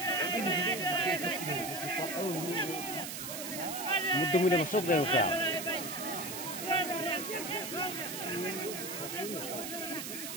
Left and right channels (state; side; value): noise; right; hiss, 6 dB below the sound